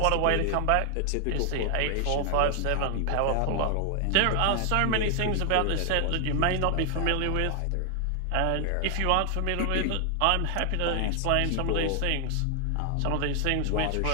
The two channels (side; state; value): both; different; correlation 0.00